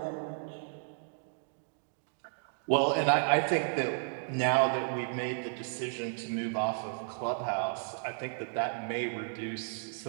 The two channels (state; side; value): silent; left; digital silence